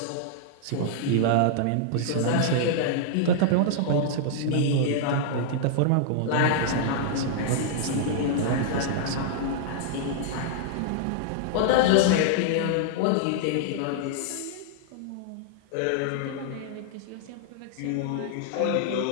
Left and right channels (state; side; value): different; both; correlation -0.01